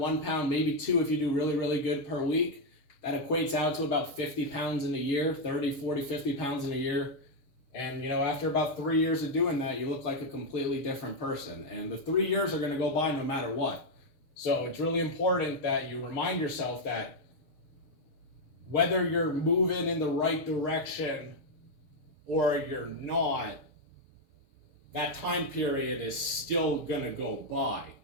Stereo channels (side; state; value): right; late; 6.8 ms